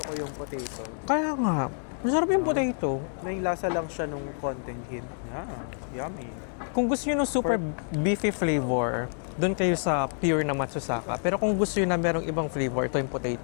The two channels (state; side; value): silent; right; digital silence